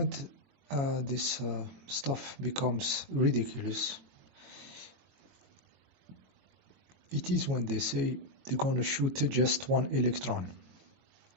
this stuff becomes ridiculous, it is when they say they're going to shoot just one electron.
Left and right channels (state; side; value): late; left; 22 ms